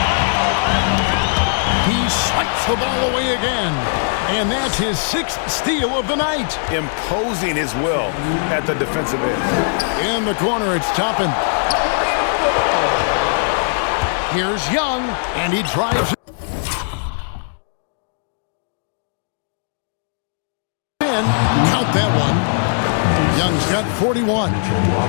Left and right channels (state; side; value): silent; right; digital silence